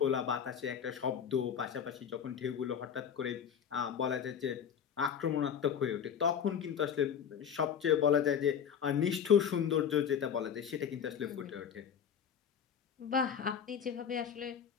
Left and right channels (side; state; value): right; quieter; 8.0 dB